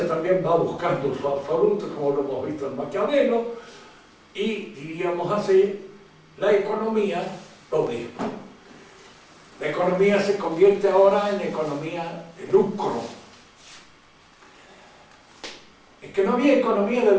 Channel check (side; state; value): both; identical; correlation 1.00